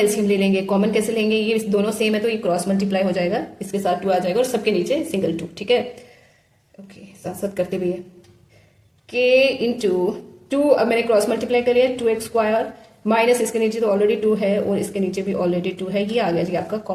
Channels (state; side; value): identical; both; correlation 1.00